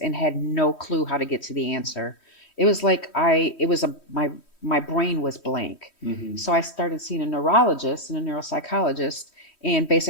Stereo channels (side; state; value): right; late; 3.1 ms